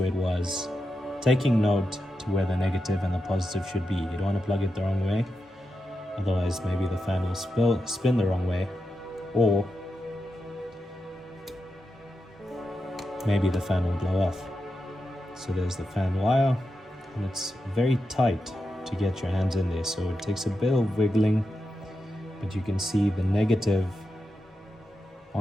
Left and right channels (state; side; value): normal; both; correlation 0.88